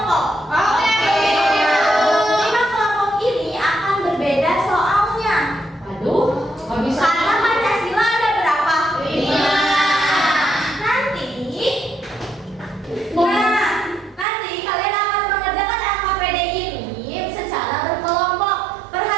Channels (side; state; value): left; drops out; at 14.2 s